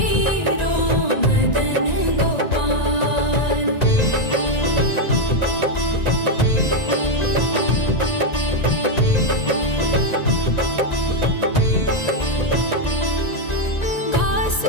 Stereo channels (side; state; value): right; late; 1.9 ms